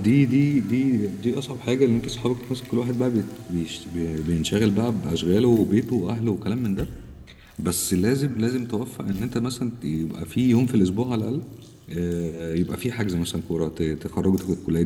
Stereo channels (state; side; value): identical; both; correlation 1.00